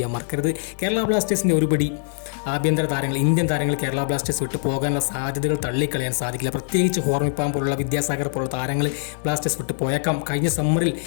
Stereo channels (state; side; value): silent; right; 63 dB below the other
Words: മറക്കരുത്. കേരള ബ്ലാസ്റ്റേഴ്സിൻ്റെ ഒരുപടി ആഭ്യന്തര താരങ്ങൾ, ഇന്ത്യൻ താരങ്ങൾ കേരള ബ്ലാസ്റ്റേഴ്സ് വിട്ട് പോകാനുള്ള സാധ്യതകൾ തള്ളിക്കളയാൻ സാധിക്കില്ല. പ്രത്യേകിച്ച് ഹോർമിപ്പാം പോലുള്ള, വിദ്യാസാഗർ പോലുള്ള താരങ്ങൾ ബ്ലാസ്റ്റേഴ്സ് വിട്ട് പോയേക്കാം. കഴിഞ്ഞ സമ്മറിൽ